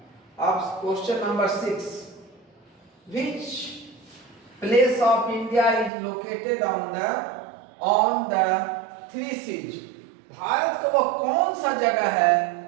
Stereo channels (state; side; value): drops out; left; at 5.9 s